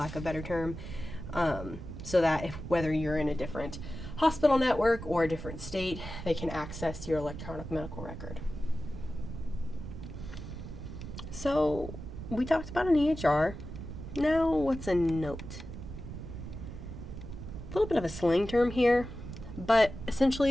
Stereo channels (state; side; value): noise; right; rumble, 9 dB below the sound